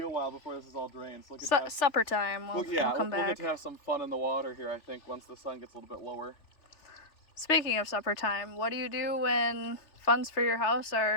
a while before this is all drained. So we'll get to have, Supper time. We'll come we'll get back. to have some fun in the water here, I think, once the sun gets a little bit lower. Speaking of supper time, what do you do when funds for your house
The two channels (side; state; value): right; late; 3.5 ms